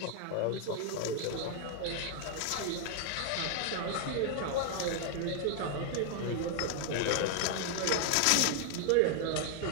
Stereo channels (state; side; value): different; both; correlation 0.00